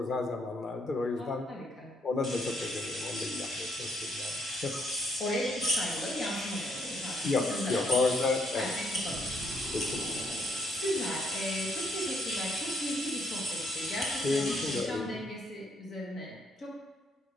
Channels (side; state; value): both; normal; correlation 0.72